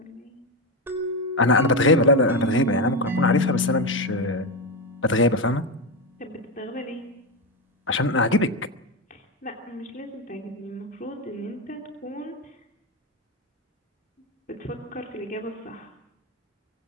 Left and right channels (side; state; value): both; normal; correlation 0.11